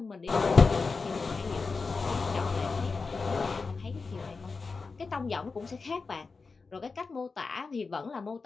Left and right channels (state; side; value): quieter; right; 4.4 dB